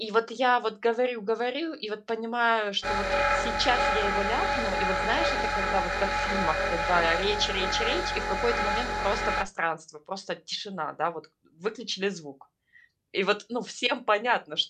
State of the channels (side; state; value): both; identical; correlation 1.00